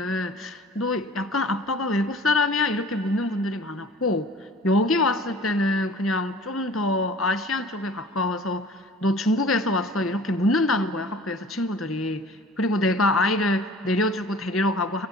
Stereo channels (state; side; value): normal; both; correlation 0.46